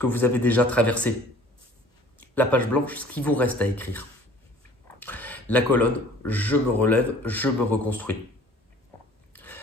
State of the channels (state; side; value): normal; both; correlation 0.50